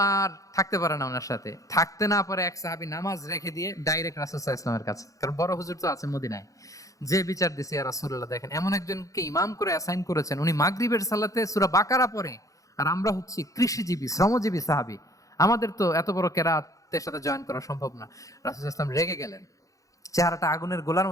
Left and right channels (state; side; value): late; right; 0.16 ms